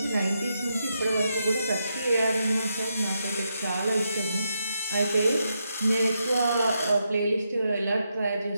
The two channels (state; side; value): inverted; both; correlation -0.83